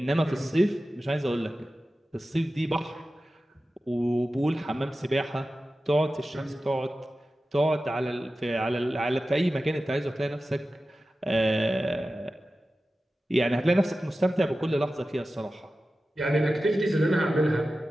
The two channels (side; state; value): both; normal; correlation 0.94